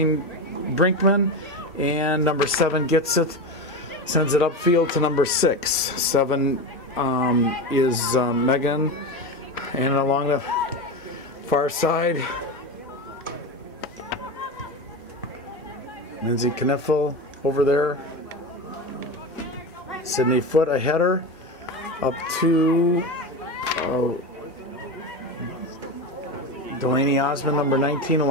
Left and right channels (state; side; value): normal; both; correlation 0.21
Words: Brinkman. And number 7 gets it. Sends it upfield to number 6. 7 is Megan. And along the far side, Lindsay Kniffel over there. Sydney Foote, a header. Up to Delaney Osmond, number 19,